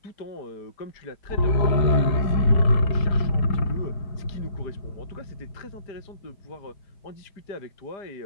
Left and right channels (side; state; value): right; late; 4.7 ms